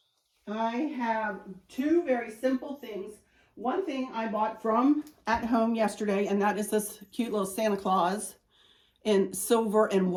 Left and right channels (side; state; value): both; identical; correlation 1.00